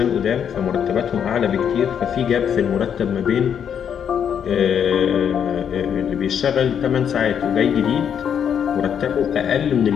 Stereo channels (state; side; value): quieter; right; 8.2 dB